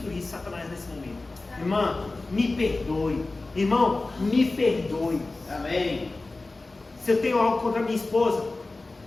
Satanás nesse momento. Irmã, me perdoe. Irmão, me perdoe. Amém. Se eu tenho algo contra minha esposa,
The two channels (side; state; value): right; quieter; 3.3 dB